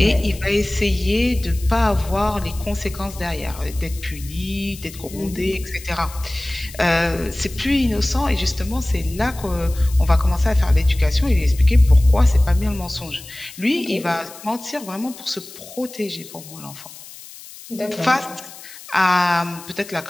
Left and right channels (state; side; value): noise; left; hiss, 17 dB below the sound